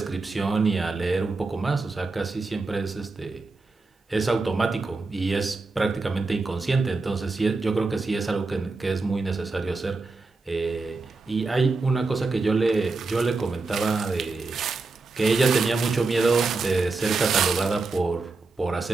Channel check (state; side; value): quieter; left; 3.7 dB